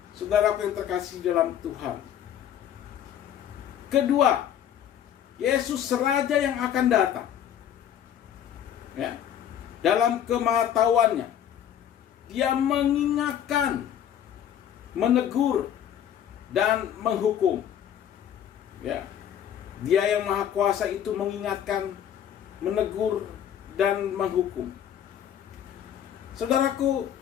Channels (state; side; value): quieter; right; 9.8 dB